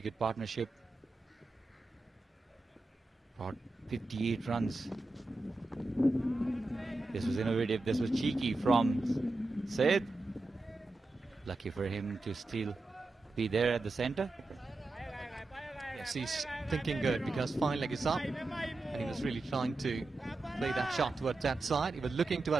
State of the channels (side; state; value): left; quieter; 3.0 dB